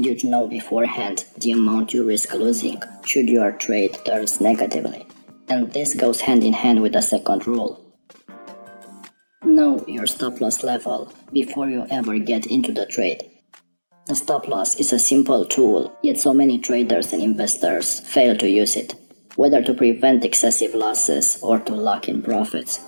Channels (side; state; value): both; inverted; correlation -1.00